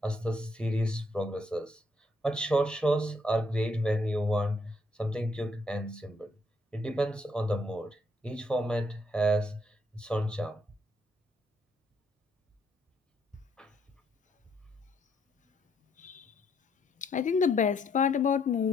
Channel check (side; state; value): both; normal; correlation 0.72